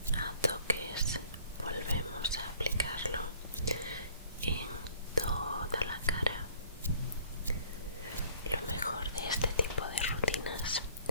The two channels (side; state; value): both; inverted; correlation -0.55